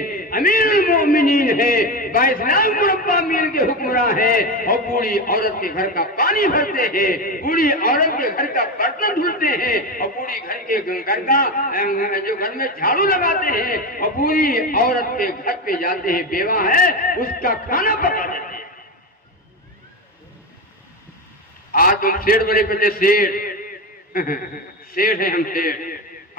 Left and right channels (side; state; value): both; normal; correlation 0.18